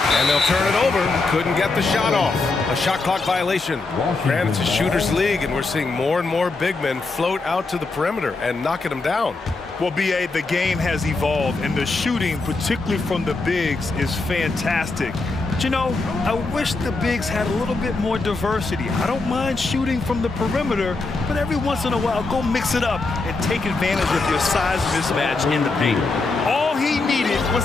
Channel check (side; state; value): right; quieter; 3.6 dB